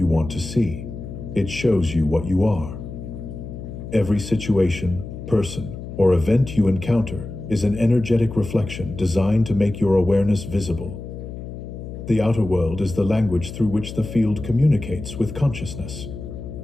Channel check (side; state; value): left; noise; hum, 10 dB below the sound